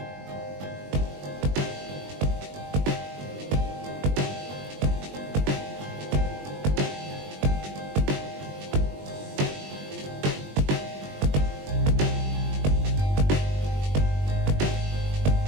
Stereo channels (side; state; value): left; late; 20 ms